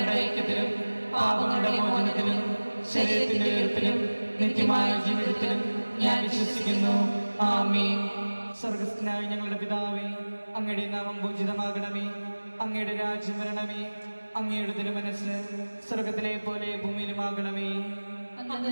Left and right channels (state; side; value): inverted; both; correlation -1.00